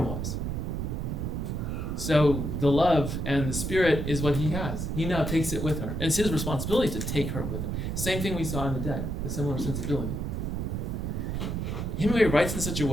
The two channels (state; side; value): noise; right; rumble, 2 dB below the sound